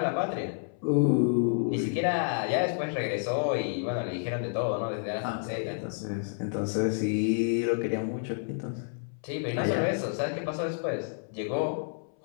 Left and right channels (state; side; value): silent; right; 58 dB below the other